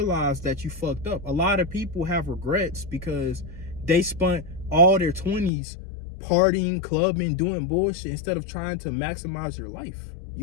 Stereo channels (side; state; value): right; drops out; at 5.5 s